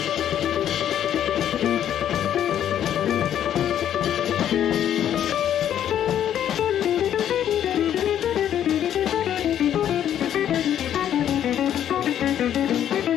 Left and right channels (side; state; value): right; quieter; 10.4 dB